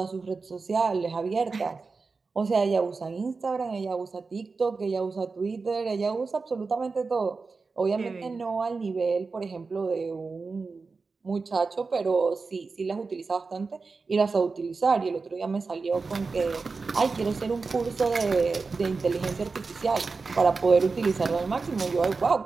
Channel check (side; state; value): left; quieter; 4.3 dB